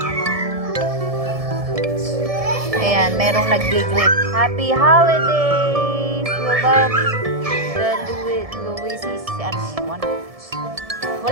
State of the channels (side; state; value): left; late; 1.7 ms